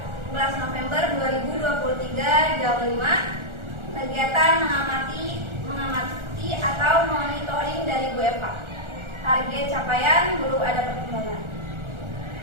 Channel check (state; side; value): late; left; 1.4 ms